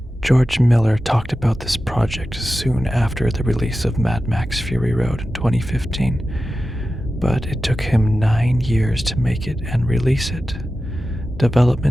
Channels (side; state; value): both; normal; correlation 0.93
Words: George Miller talked about this project soon after the release of Mad Max Fury Road in 2015, but it took him 9 years to make it and release it.